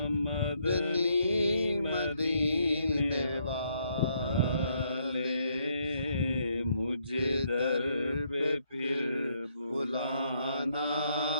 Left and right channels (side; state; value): both; inverted; correlation -0.73